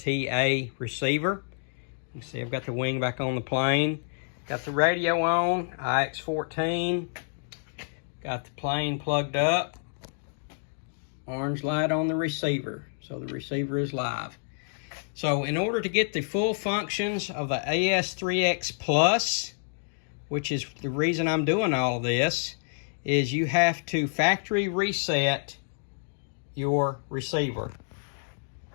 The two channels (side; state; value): right; silent; digital silence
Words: receiver. You can see I've got the wing back on the plane, got the radio on, IX14, got the plane plugged up, orange light on the receiver, so the receiver is live. So in order to get the full functions of the AS3X Plus, which is the reason I'm doing all of this, is you have to factory reset your receiver.